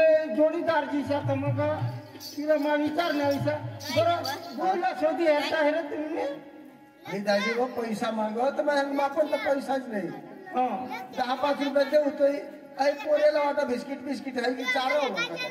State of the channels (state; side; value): identical; both; correlation 1.00